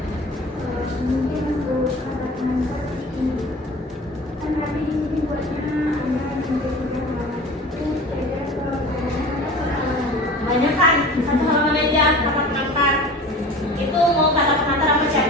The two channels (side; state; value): both; normal; correlation 0.39